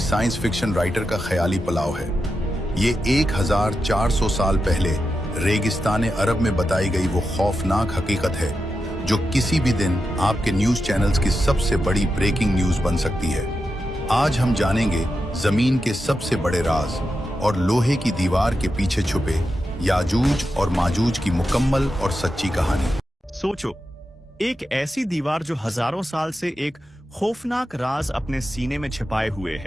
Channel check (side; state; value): both; normal; correlation 0.89